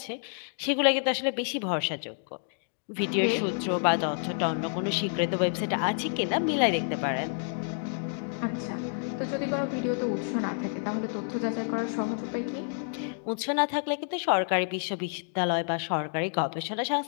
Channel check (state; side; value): silent; right; digital silence